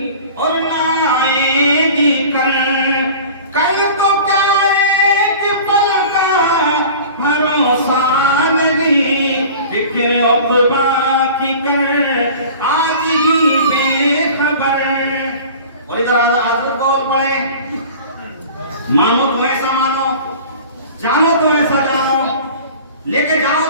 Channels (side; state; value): both; inverted; correlation -0.41